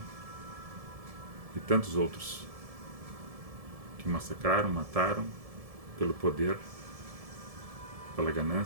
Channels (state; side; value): late; left; 1.7 ms